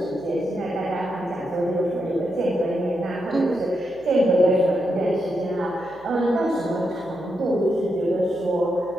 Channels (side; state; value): left; noise; hum, 27 dB below the sound